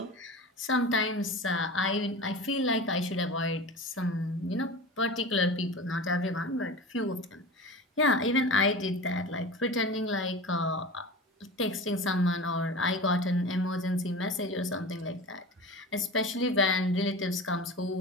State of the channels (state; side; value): normal; both; correlation 0.32